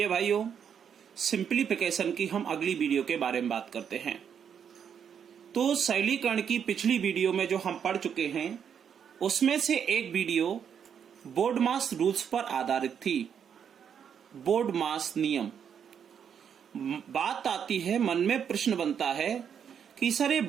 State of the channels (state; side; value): quieter; left; 7.9 dB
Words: भाइयों, सिंप्लीफिकेशन की हम अगली वीडियो के बारे में बात करते हैं। तो सरलीकरण की पिछली वीडियो में जो हम पढ़ चुके हैं उसमें से एक वीडियो बोर्ड मास रूल्स पर आधारित थी। बोर्ड मास नियम। बात आती है, मन में प्रश्न बनता है कि सर ये